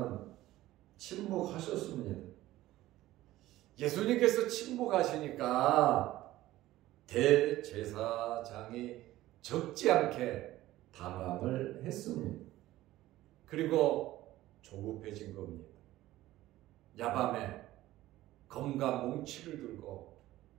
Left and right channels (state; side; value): quieter; left; 15.8 dB